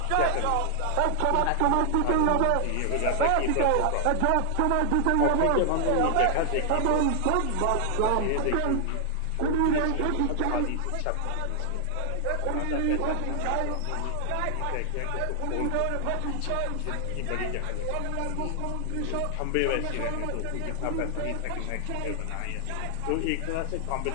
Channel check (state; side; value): different; both; correlation 0.00